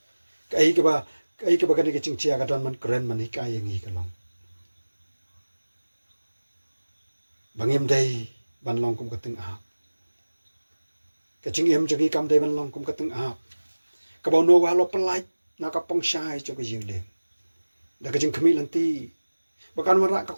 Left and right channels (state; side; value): inverted; both; correlation -1.00